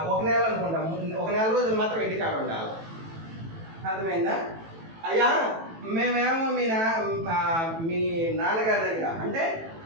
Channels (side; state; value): left; late; 18 ms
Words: 1 నెల అనుకుంటా, 1 నెల రోజులు మాత్రం ఇంటికాడ ఉండాలి. అర్థమైందా? అయ్యా మేమేమో మీ నాన్నగారి దగ్గర అంటే